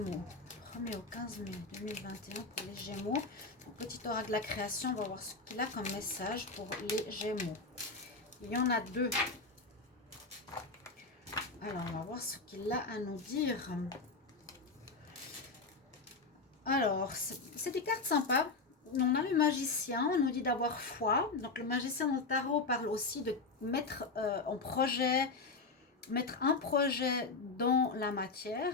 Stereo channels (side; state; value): right; quieter; 4.0 dB